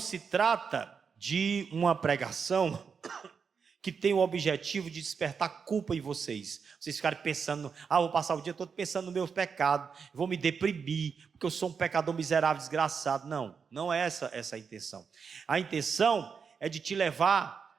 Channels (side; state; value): left; quieter; 6.0 dB